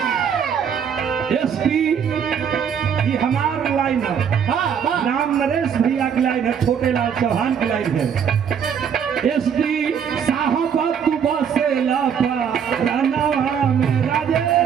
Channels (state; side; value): quieter; left; 7.6 dB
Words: ये हमार लाइन है, राम नरेश भैया की लाइन है, छोटे लाल चौहान की लाइन है। एसडी साहब तू बसे लापा रानावा में